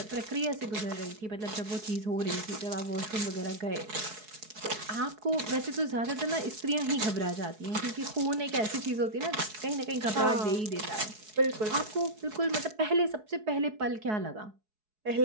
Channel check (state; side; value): late; left; 4.7 ms